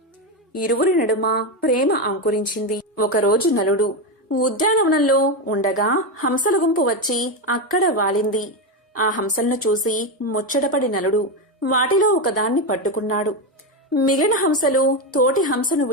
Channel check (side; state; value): both; normal; correlation 0.11